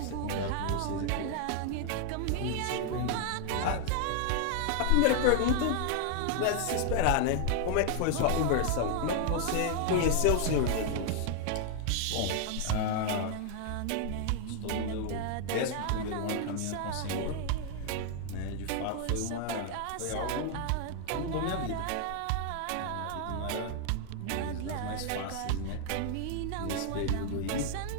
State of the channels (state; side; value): different; both; correlation 0.00